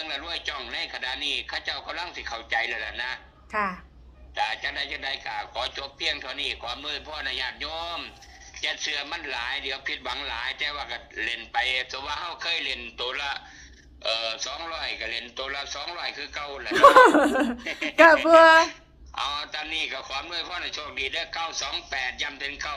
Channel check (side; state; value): both; identical; correlation 1.00